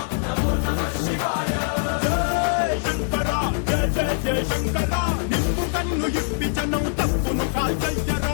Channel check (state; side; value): silent; right; digital silence